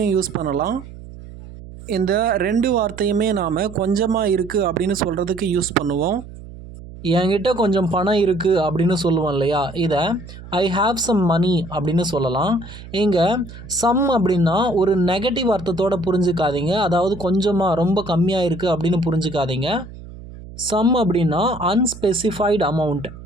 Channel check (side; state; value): right; noise; hum, 15 dB below the sound